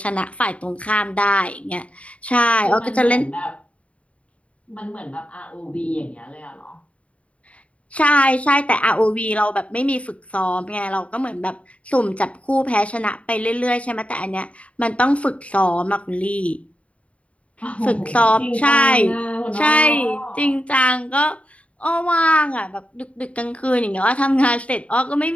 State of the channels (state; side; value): late; right; 0.064 ms